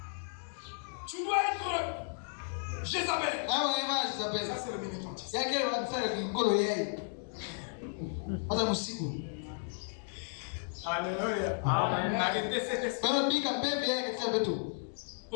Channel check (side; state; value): right; silent; digital silence